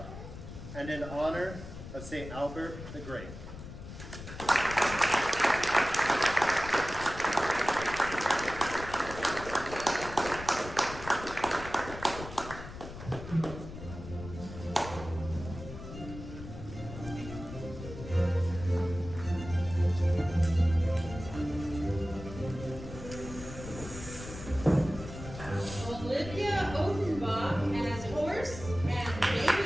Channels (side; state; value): left; noise; rumble, 11 dB below the sound